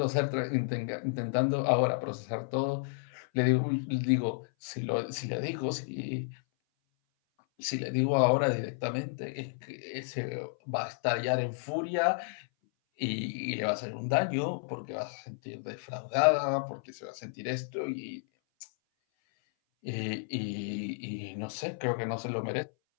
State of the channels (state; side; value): silent; right; 56 dB below the other